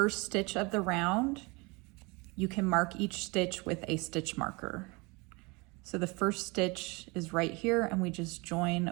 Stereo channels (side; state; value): left; quieter; 27.1 dB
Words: stitch of the round, you can mark each stitch with a stitch marker. So the first stitch is right here and we just